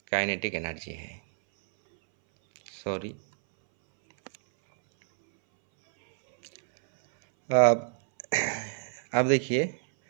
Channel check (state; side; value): silent; left; 60 dB below the other